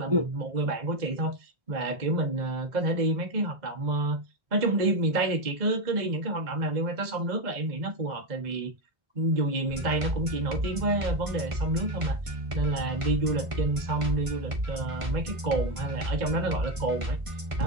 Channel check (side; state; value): left; late; 1.5 ms